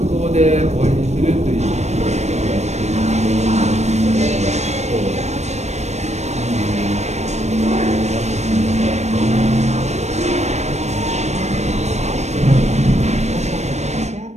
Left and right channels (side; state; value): left; late; 0.32 ms